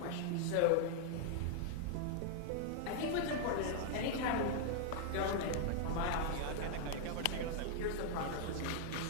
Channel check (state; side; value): different; both; correlation 0.00